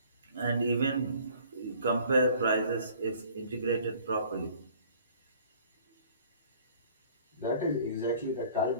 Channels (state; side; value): inverted; both; correlation -0.53